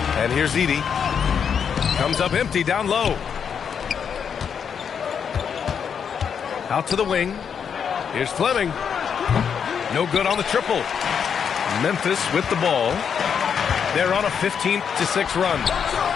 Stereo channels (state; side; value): quieter; right; 7.2 dB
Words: And here's Edey. Comes up empty down low. Out to the wing. Here's Fleming. No good on the triple. Memphis with the ball. They're on a 15-6 run.